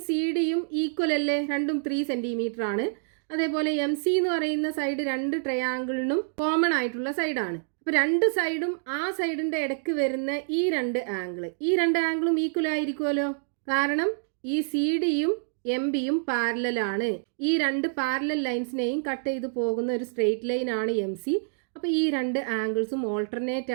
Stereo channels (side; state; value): left; silent; digital silence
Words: സി ഡിയും ഈക്വൽ അല്ലേ, രണ്ടും 3 സെന്റിമീറ്റർ ആണ്. അതേപോലെ എം സി എന്ന് പറയുന്ന സൈഡ് രണ്ട് ട്രയാങ്കിളിനും കോമൺ ആയിട്ടുള്ള സൈഡാണ്. അപ്പോൾ രണ്ട് സൈഡും ആ സൈഡിന്റെ ഇടയ്ക്ക് വരുന്ന ഈ രണ്ട് ആംഗിളും ഈക്വൽ ആയിരിക്കുമല്ലോ. കാരണം ഈ സി ഡിയും എം ബിയും പാരലലാണ്. ഈ രണ്ട് പാരലൽ ലൈൻസിനെയും കട്ട് ചെയ്ത് പോകുന്ന ഒരു സ്ട്രെയിറ്റ് ലൈൻ ആണ് എം സി. അപ്പോൾ ഈ രണ്ട് ആംഗിൾസും ഓൾട്ടർനേറ്റ്